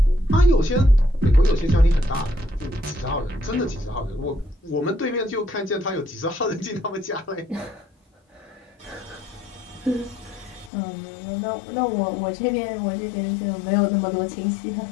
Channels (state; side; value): drops out; right; at 10.7 s